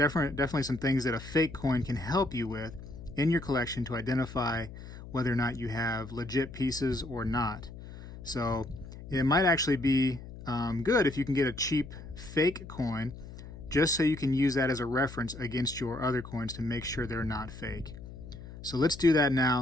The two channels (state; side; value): noise; left; hum, 13 dB below the sound